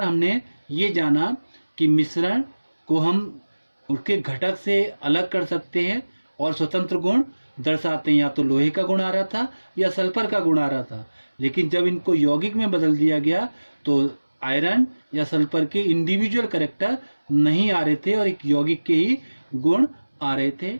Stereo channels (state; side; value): inverted; both; correlation -1.00